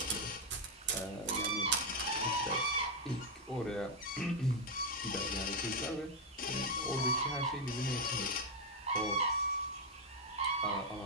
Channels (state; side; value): normal; both; correlation 0.02